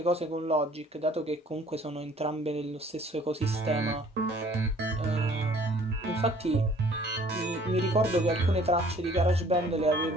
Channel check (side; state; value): both; normal; correlation 0.55